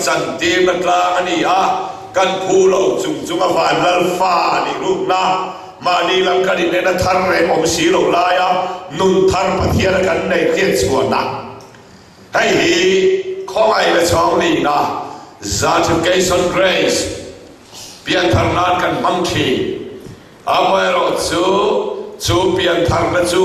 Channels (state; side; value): identical; both; correlation 1.00